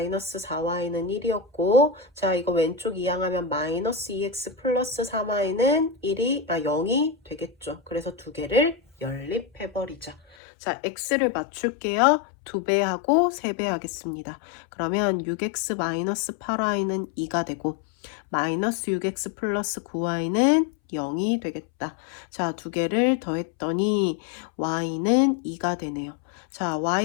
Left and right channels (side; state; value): right; drops out; at 10.4 s